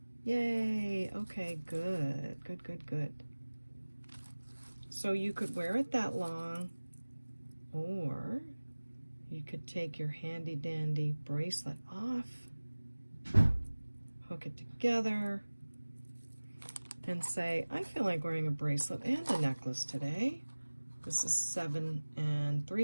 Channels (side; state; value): both; inverted; correlation -1.00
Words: Yay, okay, good, good, good, good. So you could wear it that long, or you could take your handy dandy bracelet off, hook it together, and say, I feel like wearing a bracelet and a necklace today. This is 7